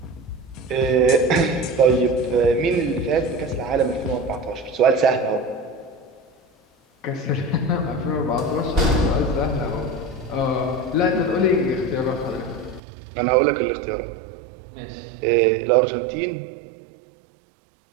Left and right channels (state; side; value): drops out; left; at 12.8 s